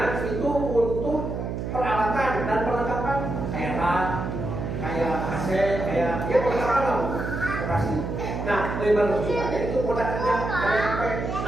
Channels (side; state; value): right; noise; hum, 4 dB below the sound